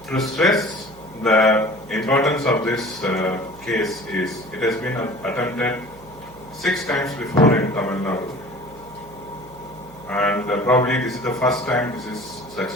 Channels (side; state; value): right; noise; hum, 22 dB below the sound